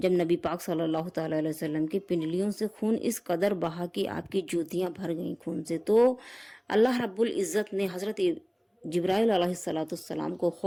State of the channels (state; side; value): identical; both; correlation 1.00